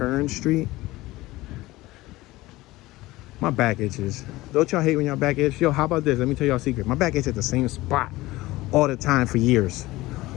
Street. My back itches. Don't y'all hate when y'all back itch? Yo, how about this? Let me tell y'all a secret. My back itches at the same spot all the time for years.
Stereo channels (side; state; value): right; quieter; 18.8 dB